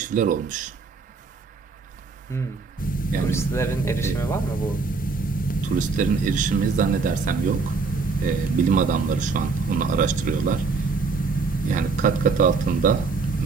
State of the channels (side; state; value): left; quieter; 4.4 dB